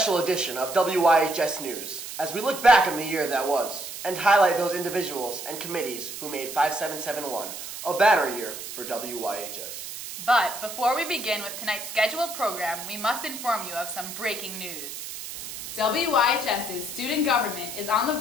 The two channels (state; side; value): noise; right; hiss, 9 dB below the sound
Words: edition of WYHS News, as we look back on the year that was, and highlight those individuals and committees who made 5771 a banner year for WYHS. But before we begin with tonight's scheduled program, we must inform you of some breaking news. WYHS's student government is on the